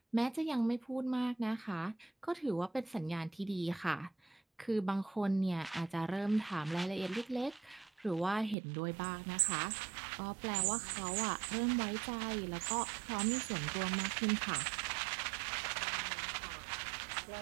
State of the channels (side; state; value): left; drops out; at 8.6 s